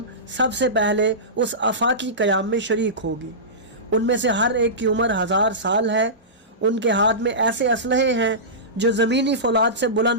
सबसे पहले उस आफाकी क़याम में शरीक होगी। उनमें से हर एक की उम्र 1000 साल है। उनके हाथ में ऐसे असलहे हैं जो ज़मीनी फौलाद से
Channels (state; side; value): normal; both; correlation -0.20